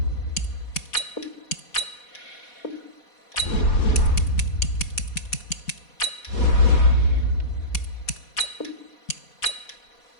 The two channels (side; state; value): right; late; 4.2 ms